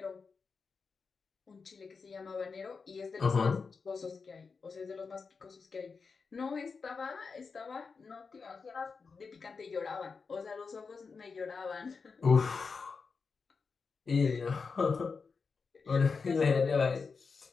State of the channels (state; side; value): quieter; right; 5.0 dB